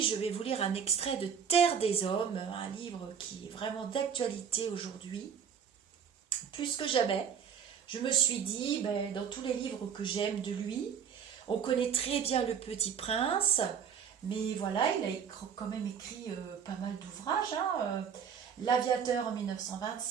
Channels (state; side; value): quieter; left; 7.4 dB